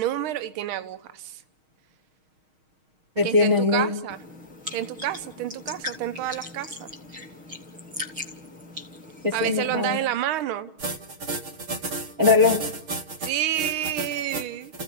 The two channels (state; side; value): late; left; 6.4 ms